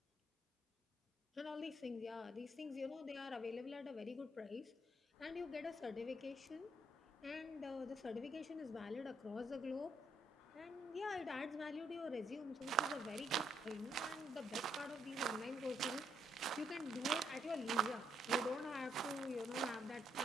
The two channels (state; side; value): normal; both; correlation 0.74